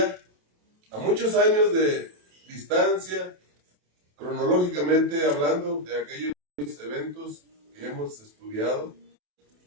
a muchos años de distancia, cronológicamente hablando, de aquellos eventos que hemos estudiado,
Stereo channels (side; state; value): left; late; 28 ms